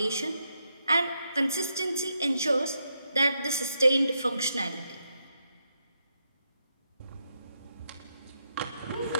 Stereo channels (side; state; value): both; inverted; correlation -0.82